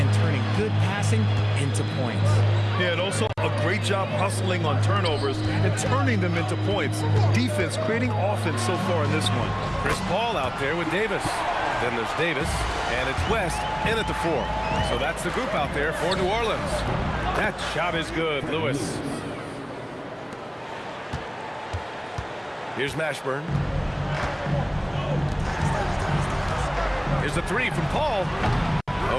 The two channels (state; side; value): identical; both; correlation 1.00